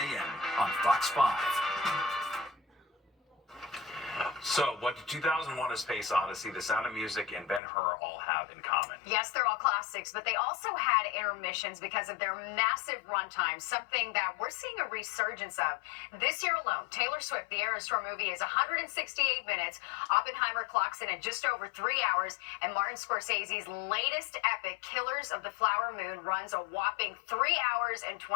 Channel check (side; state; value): right; drops out; at 7.6 s